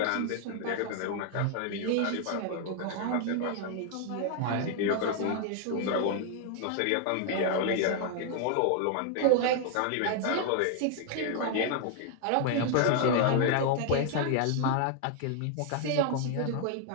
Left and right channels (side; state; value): both; different; correlation 0.00